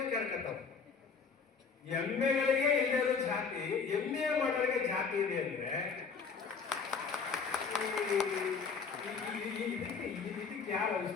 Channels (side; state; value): right; quieter; 5.3 dB